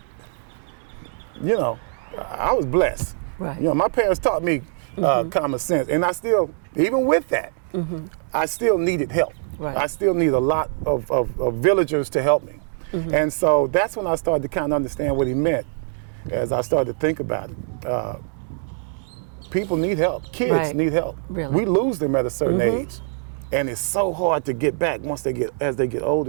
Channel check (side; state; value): left; silent; digital silence